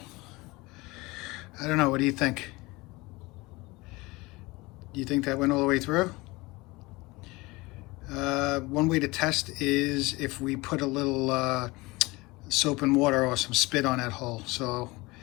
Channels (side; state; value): right; quieter; 22.7 dB